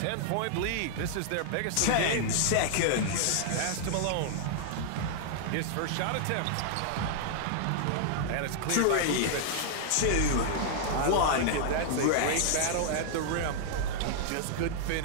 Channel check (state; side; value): different; both; correlation -0.01